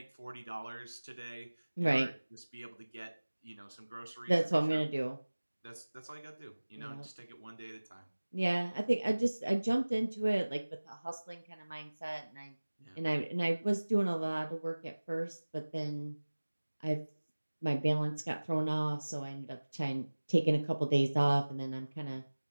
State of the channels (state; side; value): inverted; both; correlation -1.00